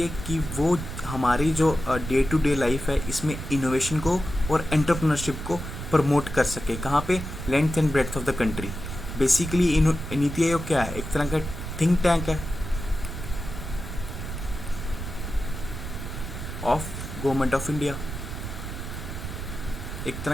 कि वो हमारी जो डे टू डे लाइफ है इसमें इनोवेशन को और एंटरप्रेन्योरशिप को प्रमोट कर सके। कहाँ पे, length and breadth of the country. Basically NITI Aayog क्या है, एक तरह का थिंक टैंक है ऑफ गवर्नमेंट ऑफ इंडिया। एक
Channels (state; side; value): noise; right; rumble, 7 dB below the sound